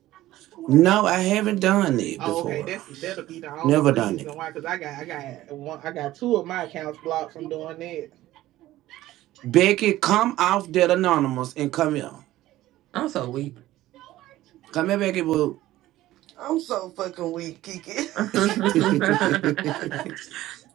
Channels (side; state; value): left; quieter; 15.5 dB